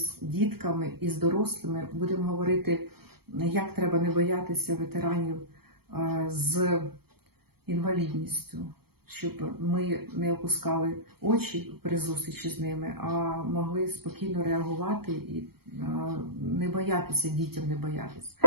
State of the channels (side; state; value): left; late; 0.96 ms